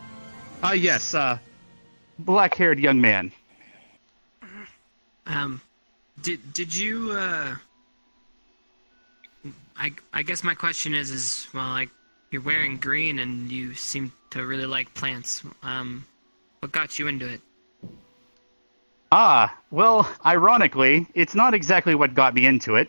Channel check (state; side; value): inverted; both; correlation -1.00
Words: Yes. Black-haired young man. Did you I guess my question is well, like, you're wearing green and you seem to really like plants. What got you into it? Well, ironically, it's not exactly what got me into